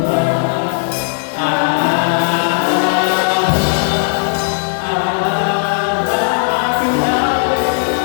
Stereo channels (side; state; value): right; silent; 56 dB below the other